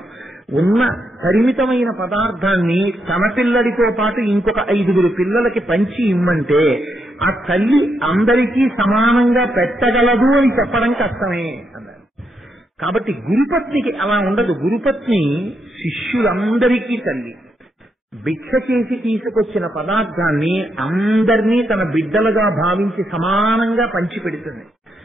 ఉన్న పరిమితమైన పదార్థాన్ని తన పిల్లడితో పాటు ఇంకొక 5 పిల్లలకి పంచి ఇమ్మంటే ఆ తల్లి అందరికీ సమానంగా పెట్టగలదు అని చెప్పడం కష్టమే అన్నారు. కాబట్టి గురుపత్నికి అలా ఉండదు. గురుపత్ని శిష్యులందరికీ తల్లి. భిక్ష చేసి తీసుకొచ్చిన పదార్థాన్ని అందరినీ తన బిడ్డలుగా భావించి సమానంగా పంచిపెడుతుంది.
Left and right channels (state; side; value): normal; both; correlation 0.80